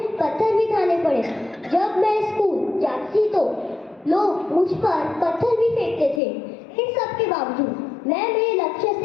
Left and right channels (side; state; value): right; drops out; at 6.2 s